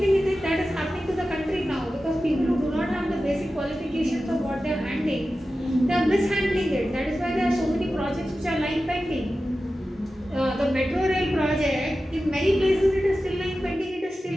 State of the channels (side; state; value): both; normal; correlation 0.93